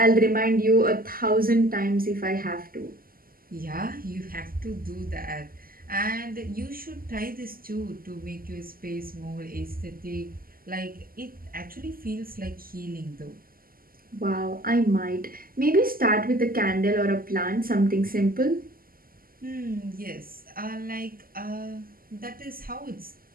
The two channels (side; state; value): left; late; 0.42 ms